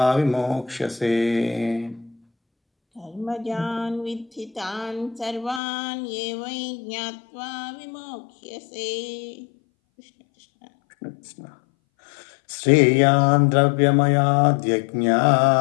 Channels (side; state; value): right; drops out; at 5.6 s